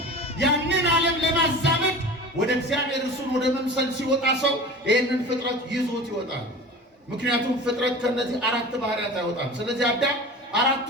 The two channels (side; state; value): both; normal; correlation 0.36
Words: ያንን ዓለም ለማዛመድ ወደ እግዚአብሔር እሱን ወደ መምሰል ሲወጣ ሰው ይህንን ፍጥረት ይዞት ይወጣል። ምክንያቱም ፍጥረት ከነዚህ አራት ባህሪያት አይወጣም። ስለዚህ አዳም